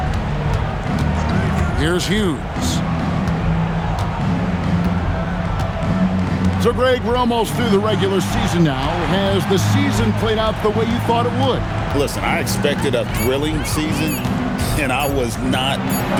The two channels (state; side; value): identical; both; correlation 1.00